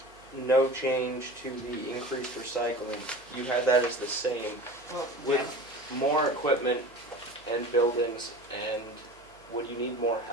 no change to the increased recycling, you had that as the same. With more equipment and buildings, and would you need more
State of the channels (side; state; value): right; noise; hum, 27 dB below the sound